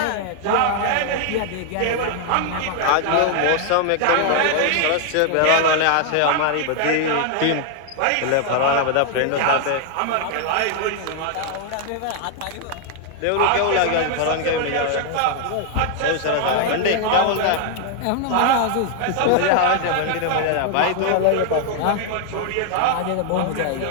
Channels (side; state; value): both; different; correlation 0.00